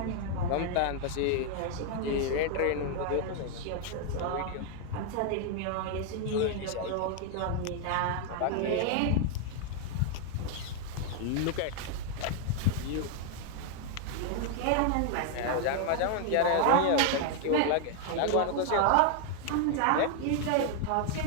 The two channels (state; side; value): different; both; correlation 0.00